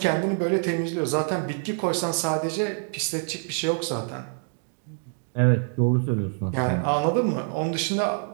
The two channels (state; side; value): silent; left; 56 dB below the other